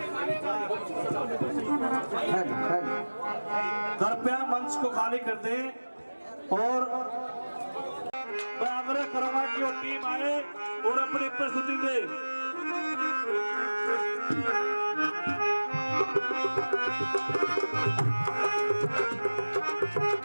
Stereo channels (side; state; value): both; inverted; correlation -1.00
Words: कृपया मंच को खाली कर दें और मैं आग्रह करूंगा कि वो टीम आए और अपनी प्रस्तुति दे।